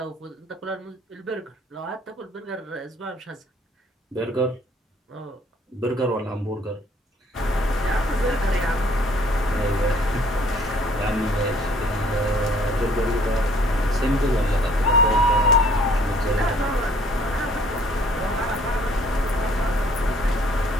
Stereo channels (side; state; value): both; normal; correlation 0.59